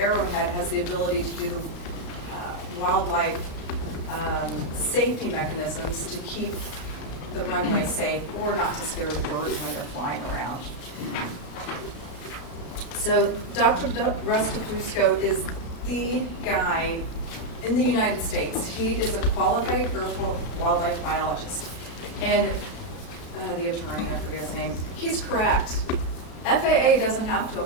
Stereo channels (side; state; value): right; late; 33 ms